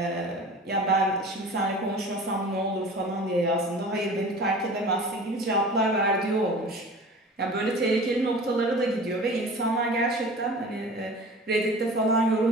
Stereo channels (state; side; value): normal; both; correlation 0.40